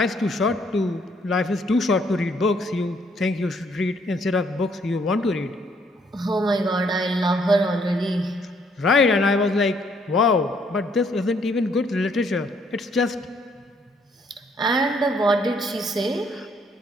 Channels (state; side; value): normal; both; correlation 0.68